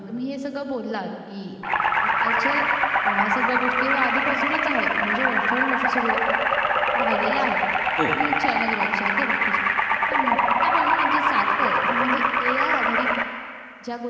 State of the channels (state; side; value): identical; both; correlation 1.00